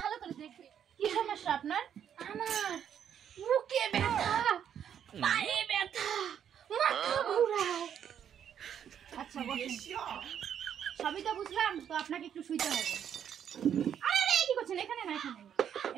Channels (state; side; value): quieter; left; 9.0 dB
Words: ভালো করে দেখবে কি সমস্যা আপনার আমার বুকে ব্যথা পায়ে ব্যথা মাথা ঘোরায় আচ্ছা বসুন সবই তো বুঝলাম তো আপনাকে একটু শুইতে হবে আরে কি করছেন এখানে না